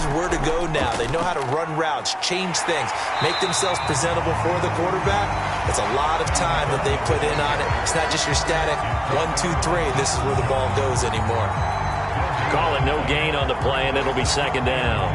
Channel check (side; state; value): both; identical; correlation 1.00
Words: where to go now. They know how to run routes, change things, make themselves presentable for the quarterback. It's a lot of time that they put in on it. It's not just your static 1, 2, 3. This is where the ball goes anymore. Call it no gain on the play, and it'll be second down.